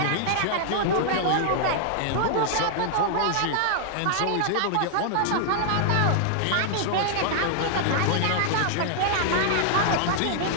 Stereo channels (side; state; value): both; different; correlation -0.01